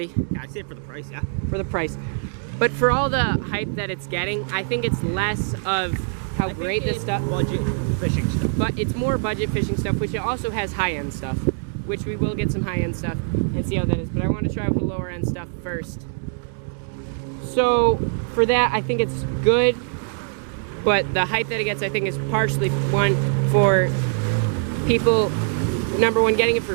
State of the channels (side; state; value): left; silent; digital silence